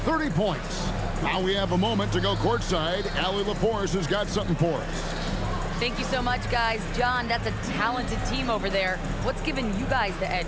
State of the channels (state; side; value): identical; both; correlation 1.00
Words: points. Now we have a moment to go courtside. Allie LaForce has got something for us. Thank you so much, guys. John, that's a talented team over there. What's given you guys the edge